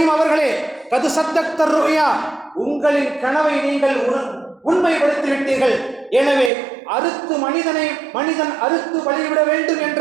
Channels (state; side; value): drops out; left; at 6.5 s